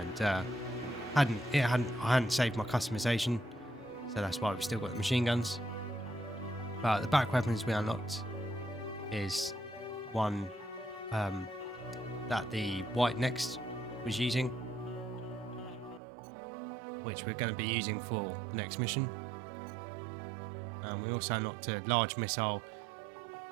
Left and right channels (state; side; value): drops out; left; at 16.0 s